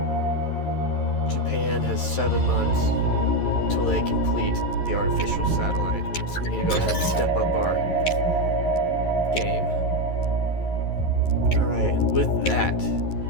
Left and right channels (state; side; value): late; right; 11 ms